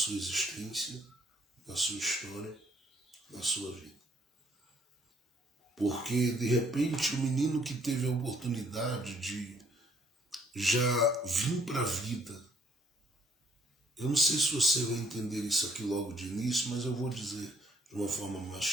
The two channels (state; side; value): normal; both; correlation 0.65